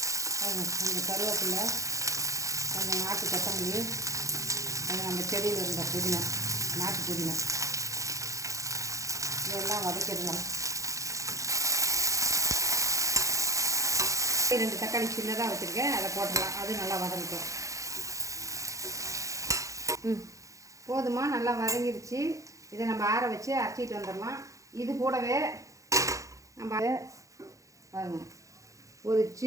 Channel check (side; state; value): left; late; 0.15 ms